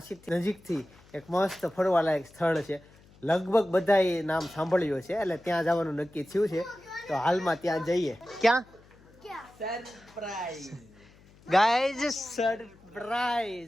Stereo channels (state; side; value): noise; left; hum, 26 dB below the sound